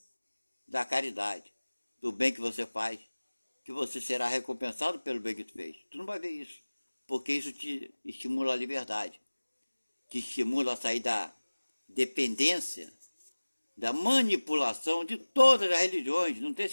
da caridade, do bem que você faz, que você será recompensado pelo bem que tu fez. Tu não vai ver isso, porque isso te estimula a liberdade, te estimula a sair da dependência, da manipulação de todas as religiões, não tem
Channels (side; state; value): both; inverted; correlation -1.00